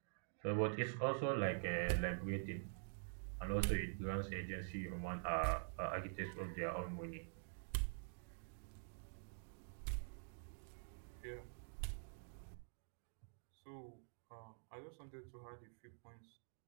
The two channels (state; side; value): silent; left; digital silence